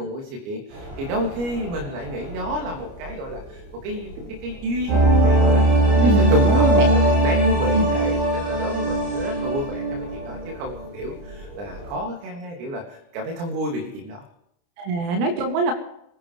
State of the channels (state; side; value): late; left; 29 ms